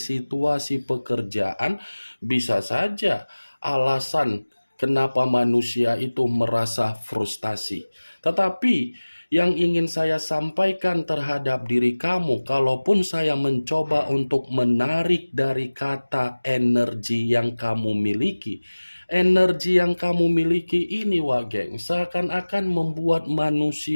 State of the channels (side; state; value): both; inverted; correlation -1.00